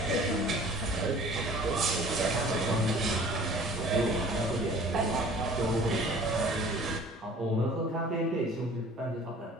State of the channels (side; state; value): both; normal; correlation 0.49